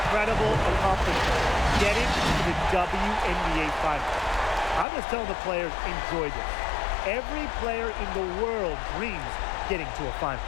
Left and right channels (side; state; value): right; drops out; at 4.9 s